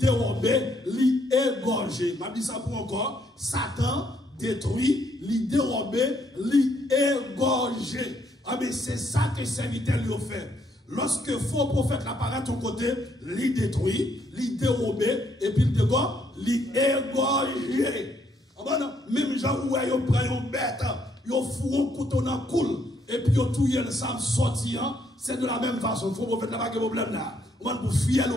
il égorge. Je dis ça pour encore. Satan détruit, il dérobe, il égorge. Ah mais c'est ça que le serviteur lui a fait. Lorsque faux prophète apparaît à ton côté, il détruit, il dérobe, et puis il dégorge, il égorge. Même gens où ils prennent une bête, ils font un couteau dans le coule, et puis ils tuent le sang sortir, c'est de la même façon. Il faut prophète n'a pas de problème là. On va pour fier le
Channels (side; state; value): both; normal; correlation 0.71